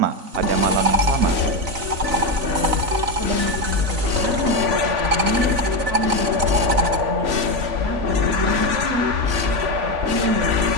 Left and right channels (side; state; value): left; late; 3.9 ms